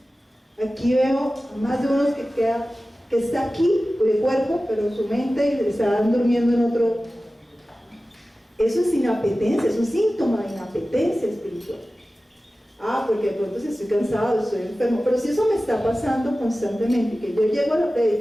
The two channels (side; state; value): both; normal; correlation 0.96